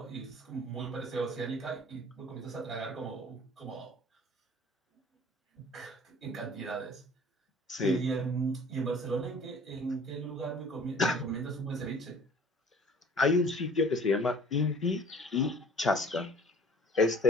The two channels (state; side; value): normal; both; correlation 0.49